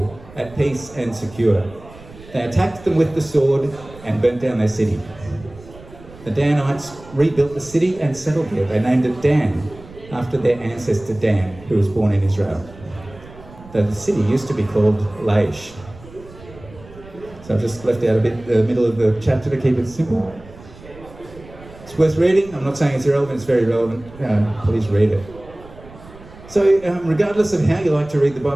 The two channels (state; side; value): noise; right; rumble, 20 dB below the sound